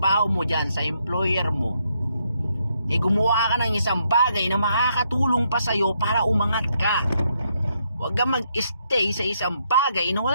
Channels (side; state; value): both; inverted; correlation -0.76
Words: mo dyan, sa employer mo, gumawa ka ng isang bagay na makakatulong pa sa'yo para umangat ka. Huwag kang mag-stay sa isang bagay na